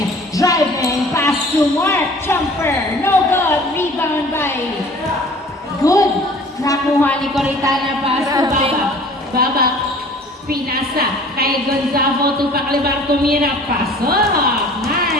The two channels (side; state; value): both; normal; correlation 0.48